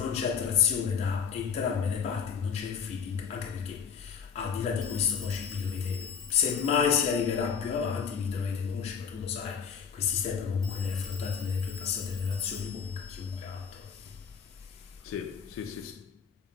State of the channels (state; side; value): quieter; right; 6.7 dB